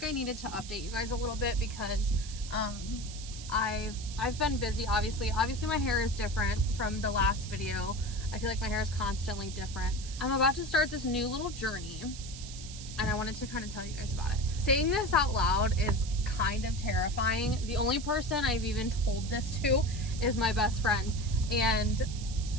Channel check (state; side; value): noise; right; hiss, 13 dB below the sound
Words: I needed to update you guys a little bit because I've been busy. Obviously my hair is different from the last video. I feel like my hair is constantly different. I'm about to start this new little journey and I wanted to kind of tell you guys about it. Saying this out loud is kind of terrifying. The only person I've even told this to is my best friend, and